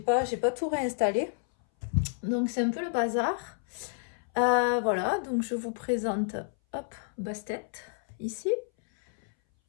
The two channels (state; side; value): silent; right; 58 dB below the other